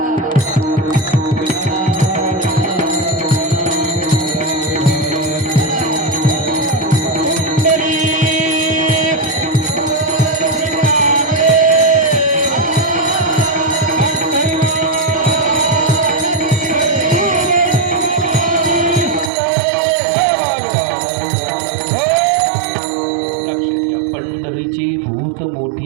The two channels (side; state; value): left; drops out; at 19.3 s